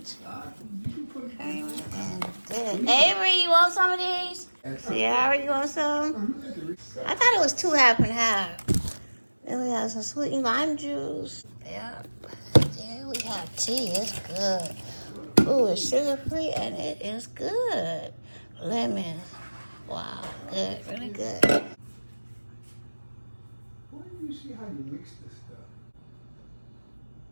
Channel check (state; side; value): inverted; both; correlation -1.00